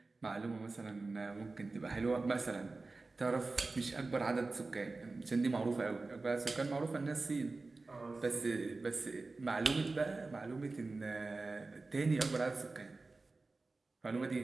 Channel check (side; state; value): left; quieter; 3.5 dB